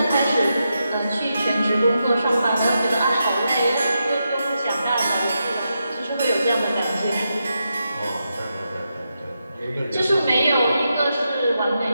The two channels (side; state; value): both; inverted; correlation -0.86